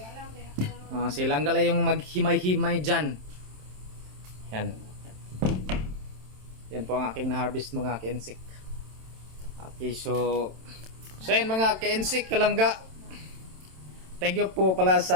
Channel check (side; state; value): left; late; 27 ms